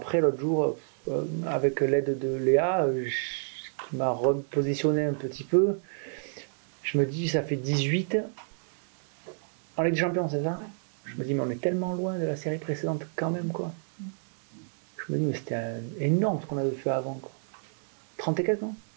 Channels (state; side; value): silent; left; digital silence